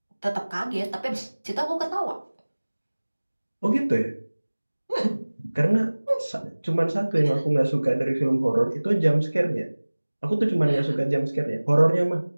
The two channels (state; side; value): inverted; both; correlation -1.00